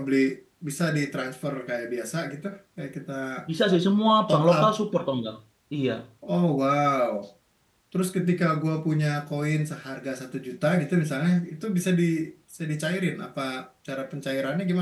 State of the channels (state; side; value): identical; both; correlation 1.00